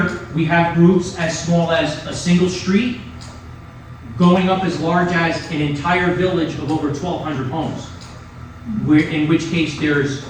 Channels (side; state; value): both; identical; correlation 1.00